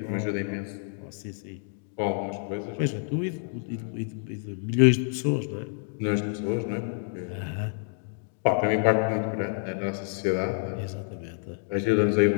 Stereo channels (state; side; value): silent; right; 59 dB below the other